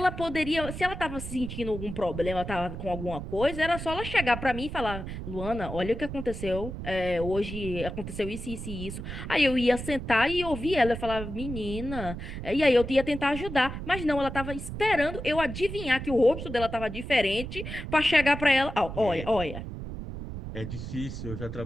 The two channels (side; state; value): right; noise; rumble, 8 dB below the sound